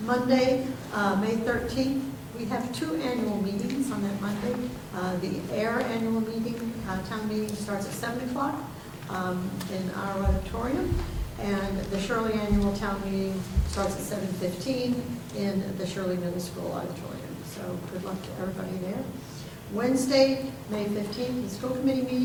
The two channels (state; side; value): identical; both; correlation 1.00